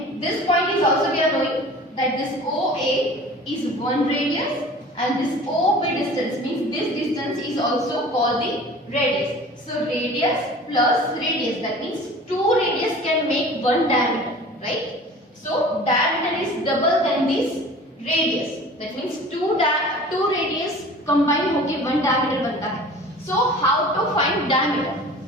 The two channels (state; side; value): normal; both; correlation 0.43